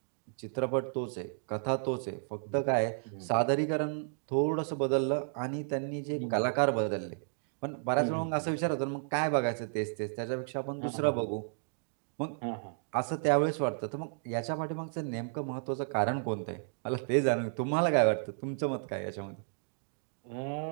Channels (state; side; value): silent; left; digital silence